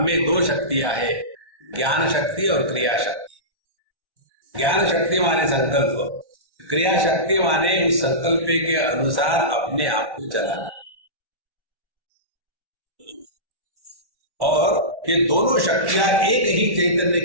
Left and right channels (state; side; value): late; left; 1.1 ms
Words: में दो शक्तियां हैं, ज्ञान शक्ति और क्रिया शक्ति। ज्ञान शक्ति माने संकल्प, क्रिया शक्ति माने उस संकल्प के अनुसार अपने आप को चलाना। और ये दोनों शक्तियां एक ही चैतन्य